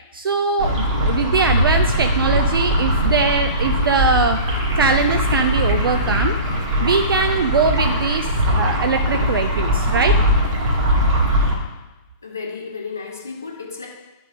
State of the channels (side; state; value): both; inverted; correlation -0.34